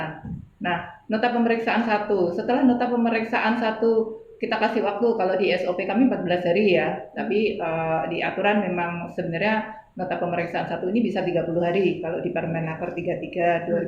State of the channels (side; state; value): both; identical; correlation 1.00